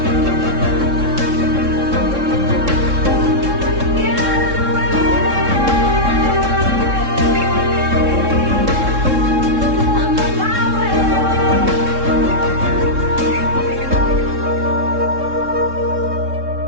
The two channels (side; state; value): left; late; 3.7 ms